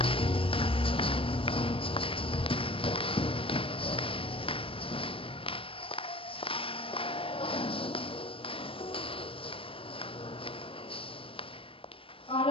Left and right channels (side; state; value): right; late; 0.26 ms